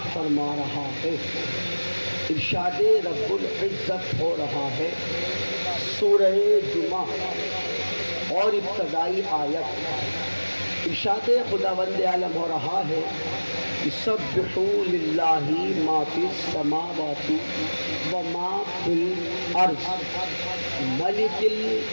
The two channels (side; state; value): both; inverted; correlation -1.00